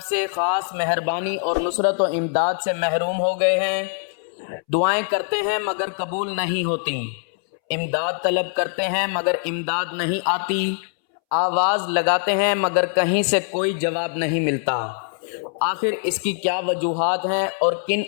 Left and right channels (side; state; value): right; silent; 64 dB below the other